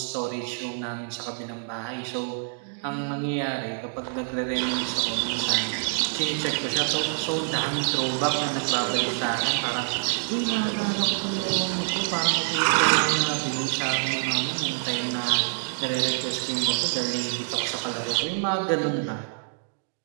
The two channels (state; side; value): silent; left; digital silence